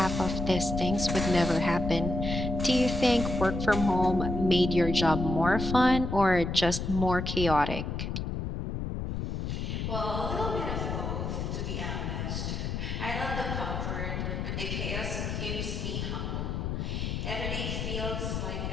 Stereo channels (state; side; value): noise; left; rumble, 3 dB below the sound